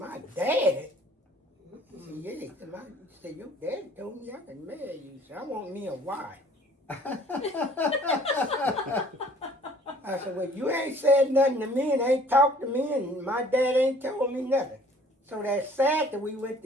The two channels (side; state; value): both; normal; correlation 0.54